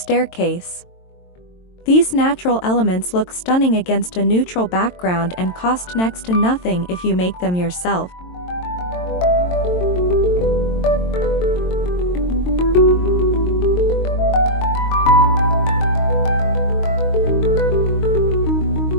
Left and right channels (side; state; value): right; late; 22 ms